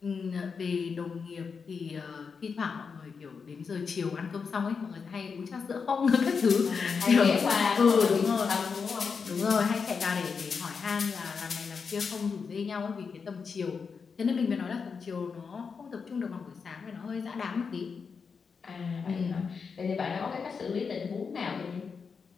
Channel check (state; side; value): quieter; right; 5.6 dB